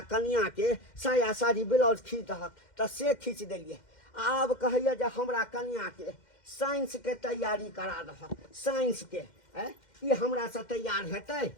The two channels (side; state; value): right; late; 2.1 ms